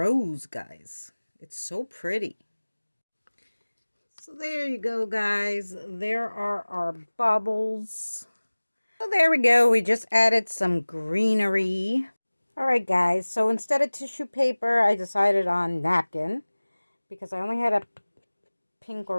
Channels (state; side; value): inverted; both; correlation -1.00